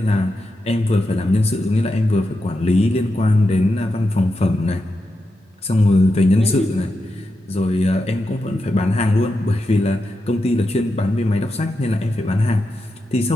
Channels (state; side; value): normal; both; correlation 0.88